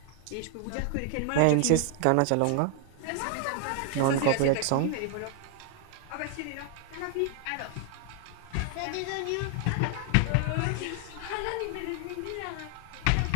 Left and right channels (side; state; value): both; different; correlation 0.00